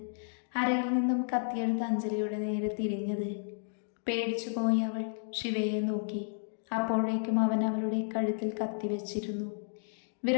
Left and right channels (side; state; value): right; silent; digital silence